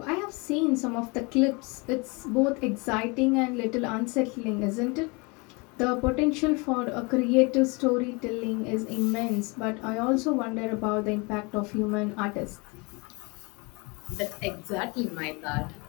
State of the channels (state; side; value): quieter; right; 28.8 dB